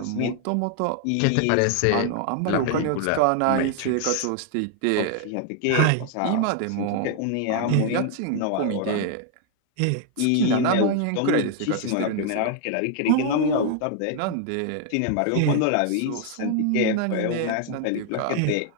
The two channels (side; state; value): both; different; correlation 0.00